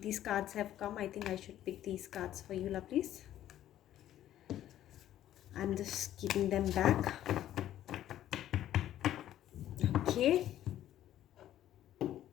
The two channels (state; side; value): quieter; right; 12.3 dB